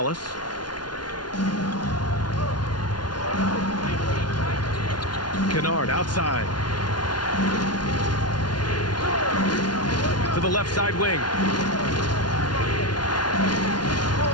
Kennard outside. To the left side wing.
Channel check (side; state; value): right; late; 0.70 ms